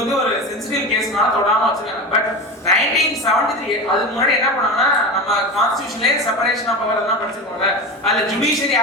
ஒரு சென்சிட்டிவ் கேஸ்னால தொடாம வச்சிருக்காங்க பட் 1973 அதுக்கு முன்னாடி என்ன பண்ணாங்கன்னா நம்ம கான்ஸ்டிடியூஷன்லயே செப்பரேஷன் ஆஃப் பவர் எல்லாம் படிச்சிருக்கோம்ல அதுல judiciary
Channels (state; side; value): normal; both; correlation 0.25